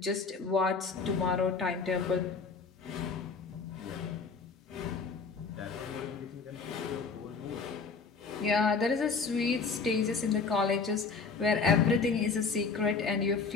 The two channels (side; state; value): right; quieter; 4.8 dB